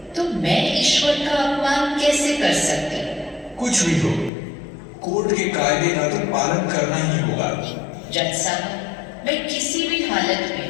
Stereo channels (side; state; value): right; drops out; at 4.3 s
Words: तो मैं ईश्वर का अपमान कैसे कर सकती? कुछ भी हो, कोर्ट के कायदे का तो पालन करना ही होगा। जज साहब, मैं किसी भी हालत